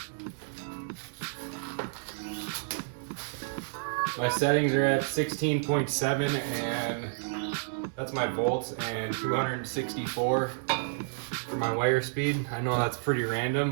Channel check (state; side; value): silent; left; digital silence